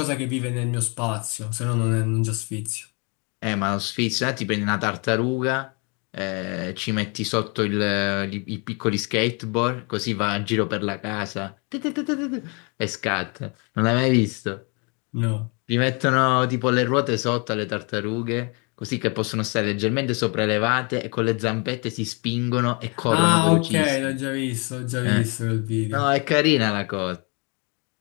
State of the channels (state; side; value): quieter; right; 33.0 dB